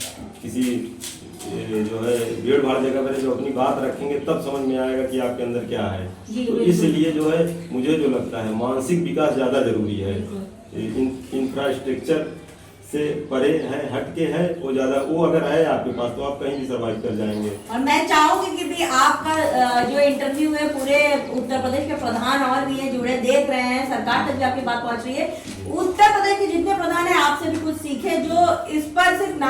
किसी जो है भीड़ भाड़ जगह पर जो अपनी बात रखेंगे, तब समझ में आएगा कि आपके अंदर क्या है। तो इसलिए जो है मुझे जो लगता है मानसिक विकास ज़्यादा जरूरी है, इंफ्रास्ट्रक्चर से परे है, हटके है, वो ज़्यादा, वो अगर है आपके पास तो आप कहीं भी सर्वाइव कर जाएंगे। और मैं चाहूंगी कि भी आपका जो इंटरव्यू है पूरे उत्तर प्रदेश के प्रधान और भी है जुड़े देख रहे हैं, सरकार तक भी आपकी बात पहुंच रही है, उत्तर प्रदेश के जितने प्रधान है आपसे भी कुछ सीखे, जो इस पर सिर्फ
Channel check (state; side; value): identical; both; correlation 1.00